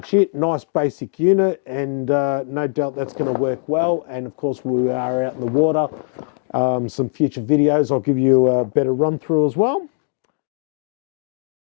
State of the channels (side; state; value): right; silent; digital silence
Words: it. Nice basic unit, and no doubt that's going to work well. And of course we are out in the water. Some future videos I'll give you a better run through as well.